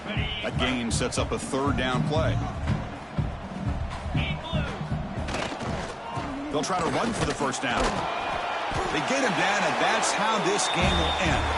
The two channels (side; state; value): both; identical; correlation 1.00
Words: That gain sets up a 3rd down play. They'll try to run for the 1st down. They get him down, and that's how this game will end.